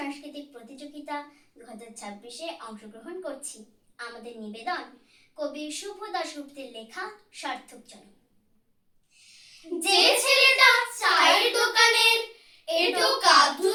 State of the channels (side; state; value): both; identical; correlation 1.00